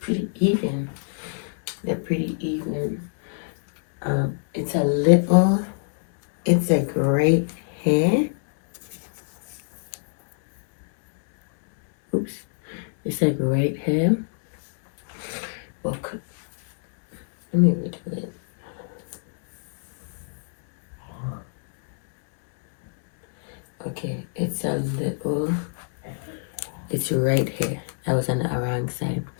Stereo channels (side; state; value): right; silent; digital silence